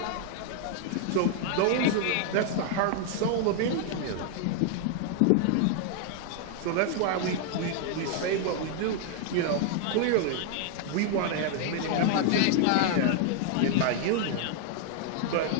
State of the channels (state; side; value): different; both; correlation 0.00